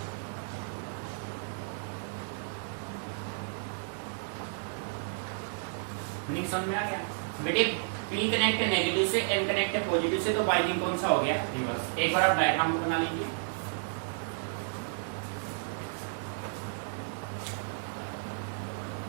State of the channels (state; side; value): silent; left; digital silence